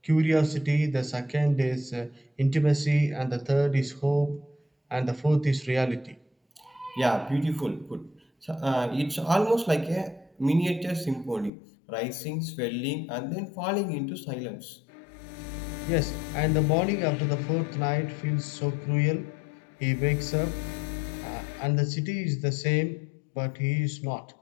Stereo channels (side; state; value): right; drops out; at 11.5 s